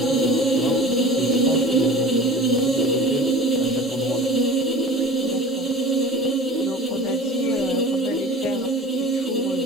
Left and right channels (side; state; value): both; normal; correlation 0.40